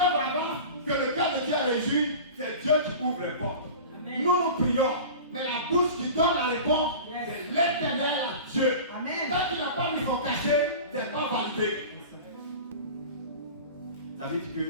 avance, que le cœur de Dieu est réjoui, c'est Dieu qui ouvre les portes. Amen. Nous prions. Mais la bouche qui donne la réponse, c'est l'Éternel à Dieu. Amen. Tant qu'il n'a pas mis son cachet, ce n'est pas validé. Ça veut dire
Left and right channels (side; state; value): both; inverted; correlation -0.35